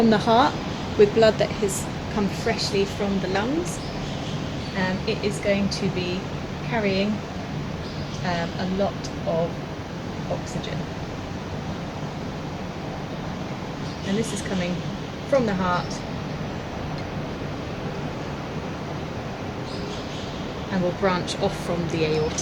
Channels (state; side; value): identical; both; correlation 1.00